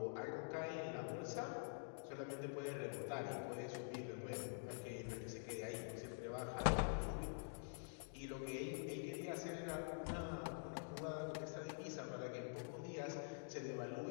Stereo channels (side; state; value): right; silent; digital silence